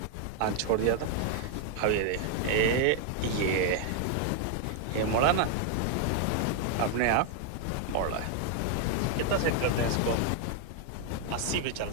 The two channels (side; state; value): both; different; correlation 0.00